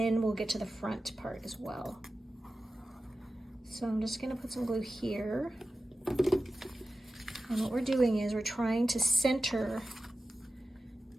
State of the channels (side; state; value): both; normal; correlation 0.94